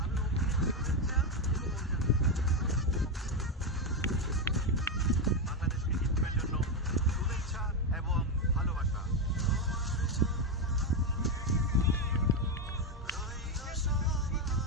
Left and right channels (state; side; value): normal; both; correlation 0.08